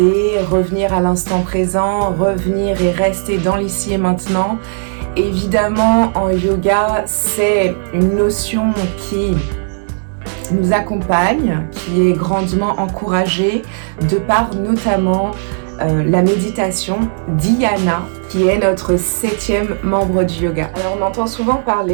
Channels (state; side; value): silent; left; digital silence